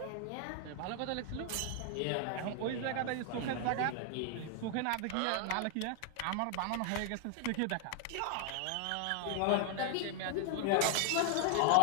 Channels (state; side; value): different; both; correlation 0.00